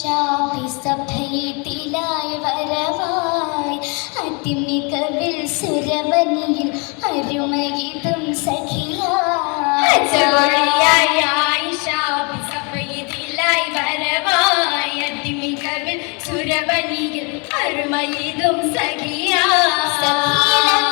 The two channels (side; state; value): right; quieter; 33.0 dB